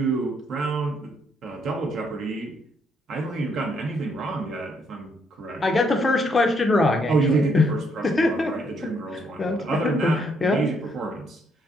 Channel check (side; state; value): both; normal; correlation 0.72